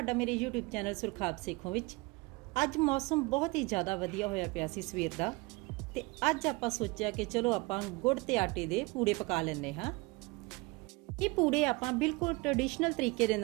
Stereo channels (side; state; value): left; quieter; 25.4 dB